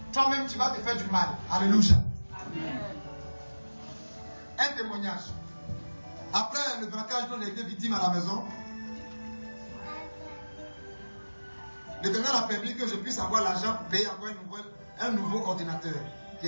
toi-même tu vas te faire du mal. Alléluia. Amen. Un témoignage. Après le braquage dont j'ai été victime à la maison, l'Éternel a permis que je puisse avoir l'argent pour payer encore un nouveau ordinateur qui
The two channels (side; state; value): both; inverted; correlation -1.00